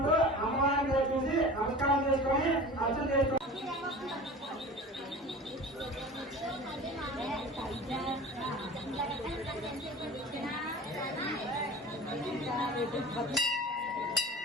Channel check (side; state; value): both; normal; correlation 0.37